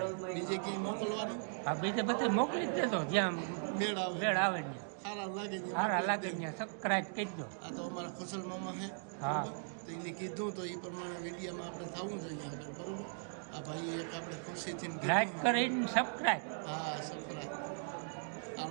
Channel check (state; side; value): silent; left; digital silence